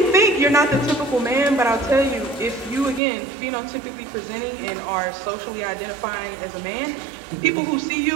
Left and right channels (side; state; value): left; drops out; at 3.0 s